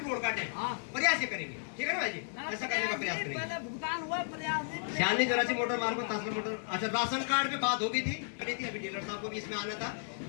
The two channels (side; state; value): right; silent; digital silence